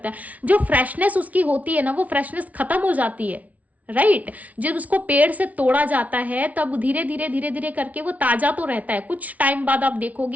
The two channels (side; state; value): left; late; 0.070 ms